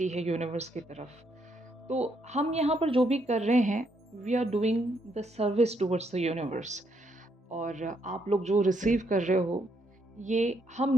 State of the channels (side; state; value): both; normal; correlation 0.75